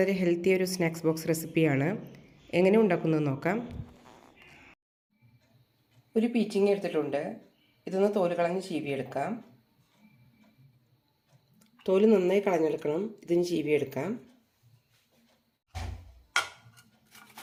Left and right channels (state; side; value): identical; both; correlation 1.00